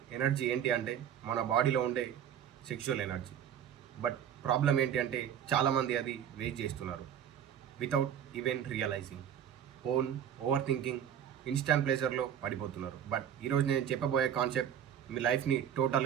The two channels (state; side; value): quieter; left; 9.3 dB